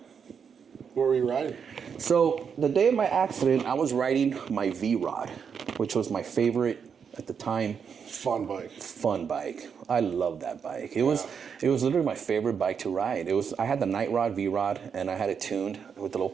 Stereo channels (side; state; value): left; quieter; 6.8 dB